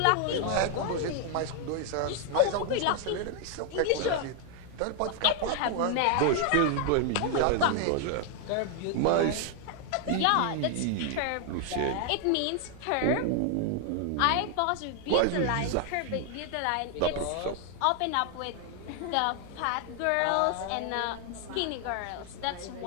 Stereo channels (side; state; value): both; different; correlation 0.00